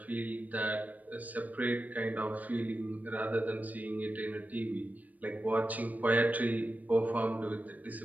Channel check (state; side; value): late; left; 0.077 ms